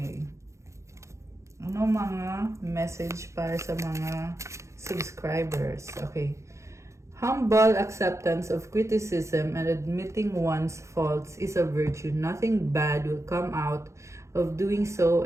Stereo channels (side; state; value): left; late; 0.14 ms